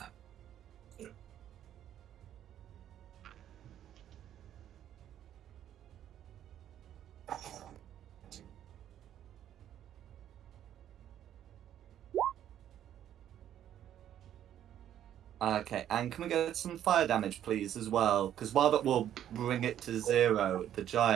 Okay, and can we get some fire damage, please, as well? Because while that will bring it to 0, the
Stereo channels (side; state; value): left; quieter; 10.8 dB